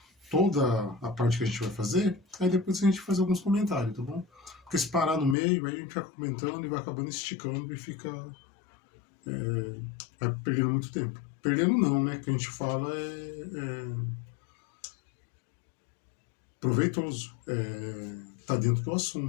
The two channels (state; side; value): drops out; right; at 5.4 s